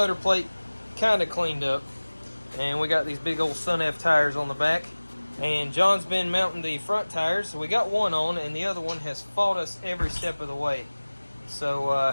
plate kind of cleaned up, and we got these big old Sun F tires on the back. And John's been mounting the front tires. So we got one on, and the other one has fought us every step of the way. So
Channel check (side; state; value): both; inverted; correlation -1.00